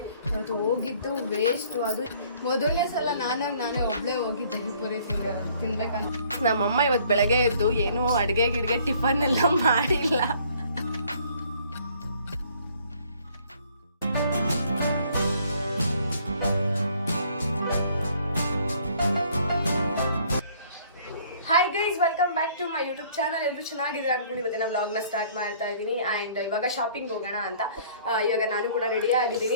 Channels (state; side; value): inverted; both; correlation -0.59